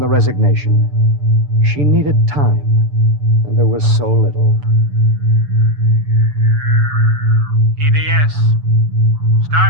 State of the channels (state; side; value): late; left; 6.9 ms